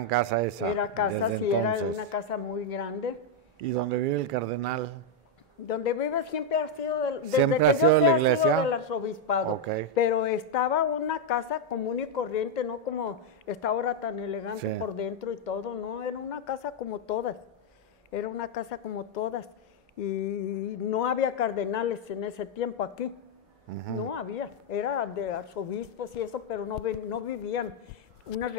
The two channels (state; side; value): normal; both; correlation 0.00